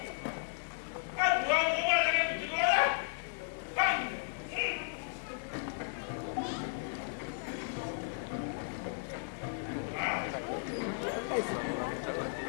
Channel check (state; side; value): silent; right; 54 dB below the other